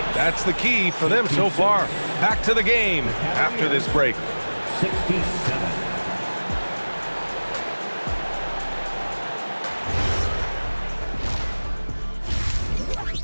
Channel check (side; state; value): both; inverted; correlation -1.00